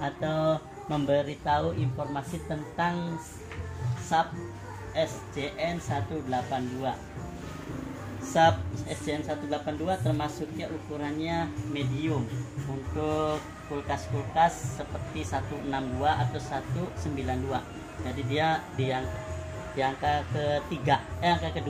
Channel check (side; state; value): both; identical; correlation 1.00